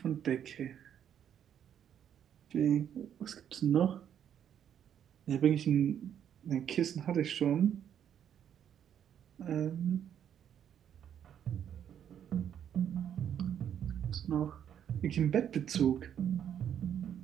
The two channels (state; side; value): quieter; left; 9.3 dB